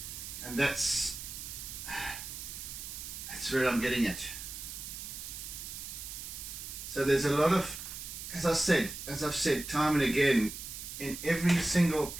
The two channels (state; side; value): noise; right; hiss, 9 dB below the sound